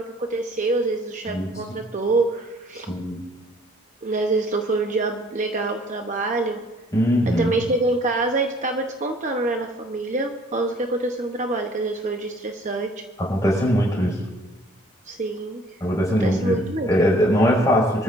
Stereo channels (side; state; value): both; normal; correlation 0.57